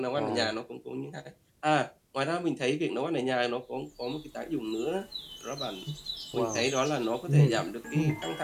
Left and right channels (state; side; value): identical; both; correlation 1.00